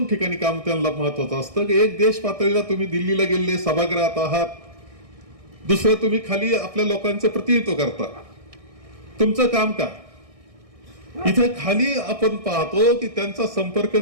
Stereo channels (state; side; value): late; left; 1.6 ms